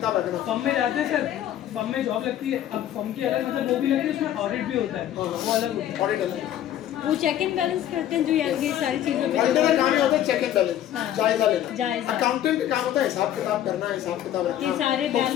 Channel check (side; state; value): right; quieter; 11.6 dB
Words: रखना। फर्म में जाते हैं सर, फर्म में जॉब लगती है, अब फर्म की अलग मतलब वो भी लगती है, उसमें ऑडिट भी होता है, वो अलग होता है। ऑडिट अलग। वो चेक एंड बैलेंस करते हैं जो यार ये सारी चीजों पे ऑडिटर का काम ये होता है चेक एंड बैलेंस, हाँ। जायजा लेना। जायजा। अकाउंटेंट का काम होता है हिसाब किताब करना, हिसाब किताब रखना, ये सारे books